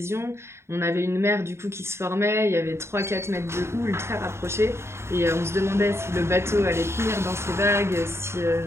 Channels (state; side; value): late; left; 0.13 ms